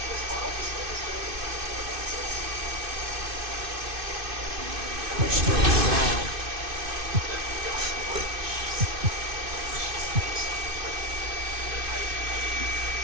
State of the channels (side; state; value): left; late; 2.5 ms